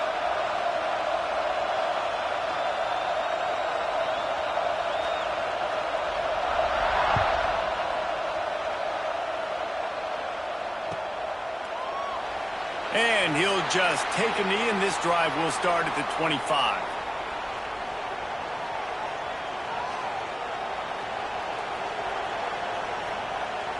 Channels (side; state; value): both; identical; correlation 1.00